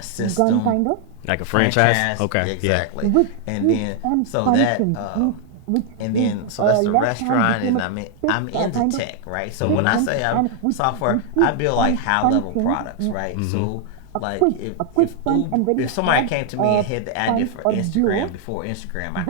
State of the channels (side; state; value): both; different; correlation 0.00